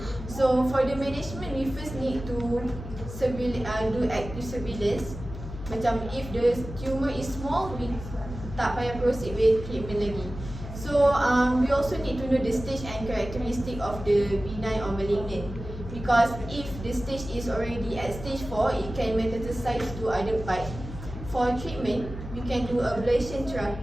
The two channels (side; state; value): left; noise; hum, 10 dB below the sound